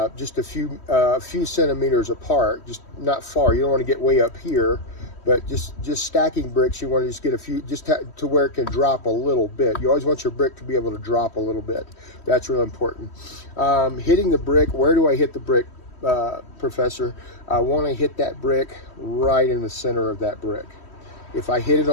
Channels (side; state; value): right; late; 3.1 ms